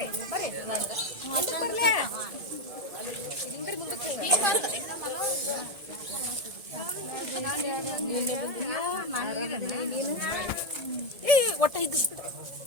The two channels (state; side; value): late; left; 1.7 ms